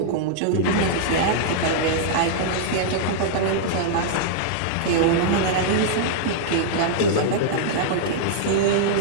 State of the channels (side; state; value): both; different; correlation -0.02